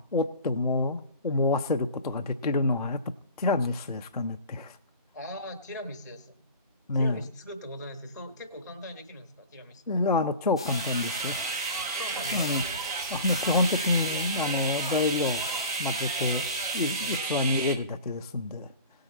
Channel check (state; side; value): inverted; both; correlation -0.38